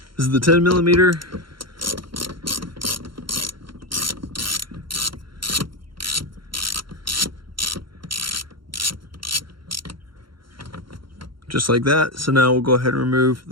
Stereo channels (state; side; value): late; left; 0.73 ms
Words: this is the 10 millimeter. Just like that. So now we'll go ahead and remove